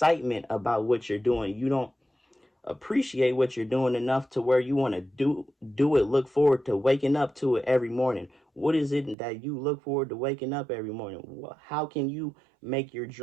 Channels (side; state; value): left; drops out; at 9.2 s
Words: about what you're doing. You don't appreciate what you're doing enough to where you want to do it, look forward to waking up to it every morning. What is it that you look forward to waking up every morning? How can you make your